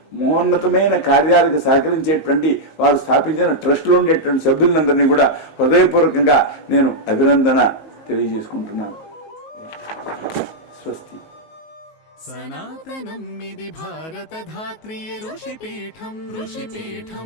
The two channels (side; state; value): right; late; 19 ms